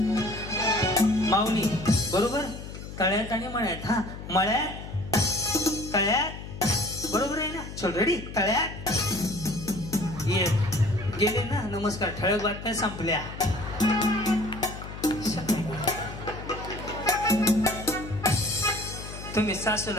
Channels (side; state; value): left; noise; hum, 11 dB below the sound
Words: माऊली. बरोबर. तळ्यात आणि मळ्यात. हा, मळ्यात, तळ्यात. बरोबर आहे ना? चल. रेडी? तळ्यात. ये गेले ना. नमस्कार. ठळक बातम्या संपल्या. तुम्ही